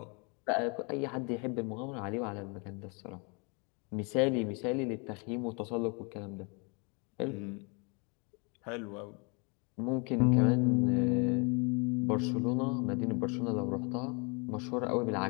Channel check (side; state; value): right; quieter; 32.9 dB